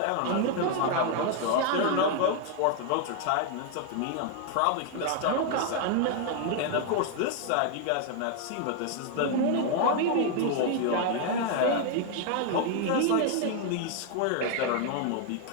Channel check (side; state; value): both; different; correlation 0.00